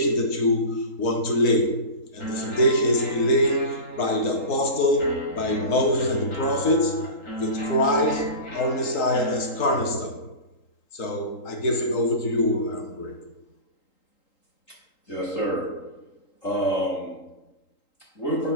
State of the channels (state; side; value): late; right; 3.8 ms